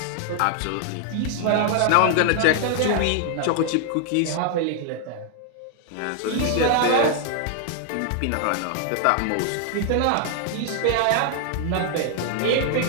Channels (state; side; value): different; both; correlation 0.00